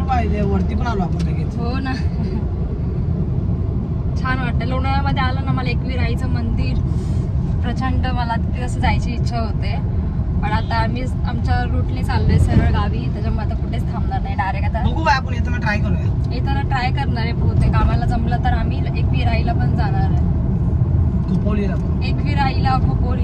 पाहिजे वरती पण आलो आपण लगेच. हो ना. छान वाटतं. लोणावळ्यामध्ये आलं ना मला एकवीर आईचं मंदिर प्रचंड मला तिथे असं जायची इच्छा होते. पण आता आम्ही आमच्या रूटने चाललोय सरळ गावी. त्याच्यामुळे आता कुठेच थांबणार नाही. डायरेक्ट आता बघू बाय आपण येताना ट्राय करूया. येताना ट्राय करणार आहे बहुतेक. आम्हाला जमलं तर आम्ही एकवीर आईला पण जाणार आहे. खोपोलीला एकवीर आईला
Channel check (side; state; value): both; identical; correlation 1.00